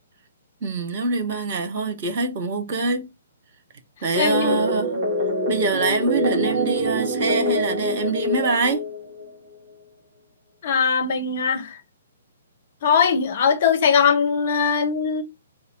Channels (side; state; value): both; inverted; correlation -0.46